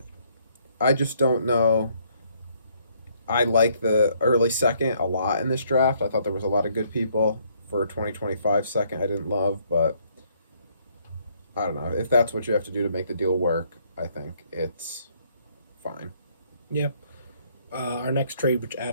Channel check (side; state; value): both; inverted; correlation -0.68